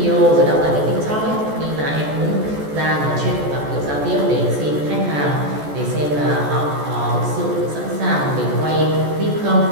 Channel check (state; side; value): late; left; 14 ms